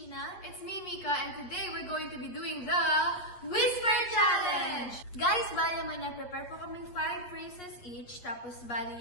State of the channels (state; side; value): late; right; 8.5 ms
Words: It's me, Mika, and today we're going to be doing the Whisper Challenge! Guys, bali naman na-prepare po kaming 5 phrases each. Tapos bali